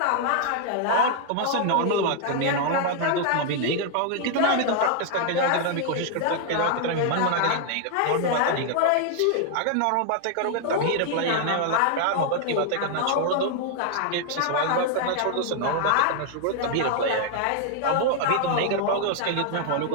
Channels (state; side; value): different; both; correlation 0.00